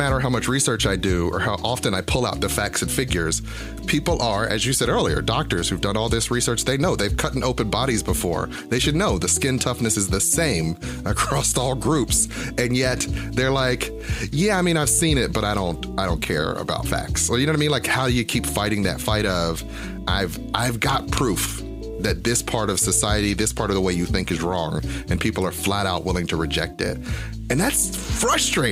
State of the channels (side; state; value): both; identical; correlation 1.00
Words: how much research I do or how often I pull out the facts and figures. People are, as you said earlier, doctors who've done all this research, they know they've cut open bodies before. They should know the skin toughness is the same across all groups. And yet they're like, yeah, I mean, I've seen it, but I don't care about facts. Well, you know what I mean? Like, how do you keep fighting that fight of, I've got proof that this part of society, this part of the way you think is wrong, and people are flat out willing to reject it. And that's